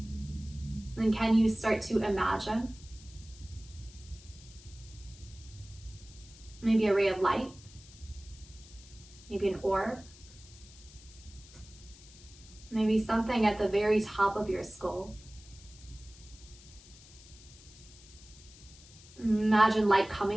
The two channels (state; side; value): noise; left; hiss, 21 dB below the sound